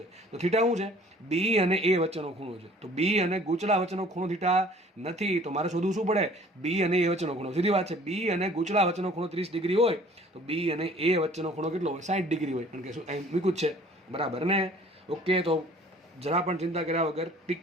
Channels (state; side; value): normal; both; correlation 0.53